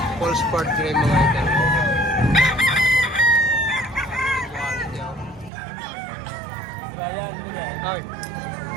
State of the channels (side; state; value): left; drops out; at 5.5 s